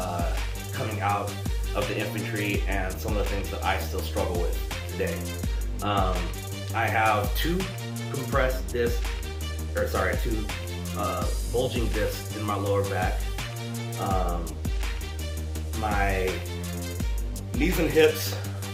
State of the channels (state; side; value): identical; both; correlation 1.00